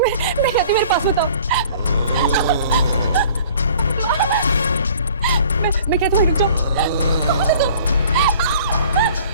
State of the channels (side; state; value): both; inverted; correlation -0.49